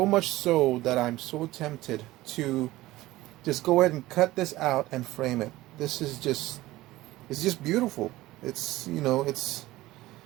much so that I'm so tempted to just go ahead and cut this out and frame it. This is it's just beautiful. It's, you know, it's,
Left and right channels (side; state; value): left; quieter; 17.5 dB